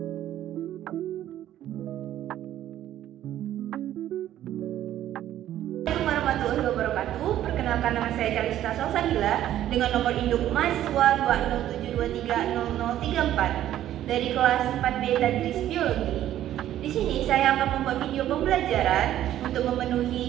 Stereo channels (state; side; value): quieter; left; 12.3 dB